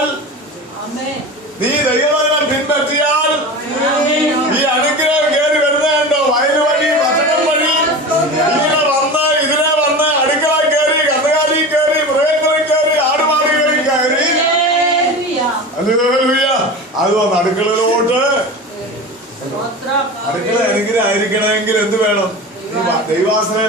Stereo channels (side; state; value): both; normal; correlation 0.30